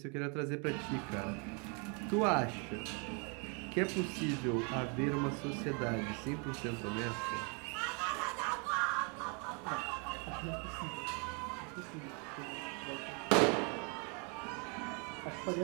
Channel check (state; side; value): quieter; left; 35.1 dB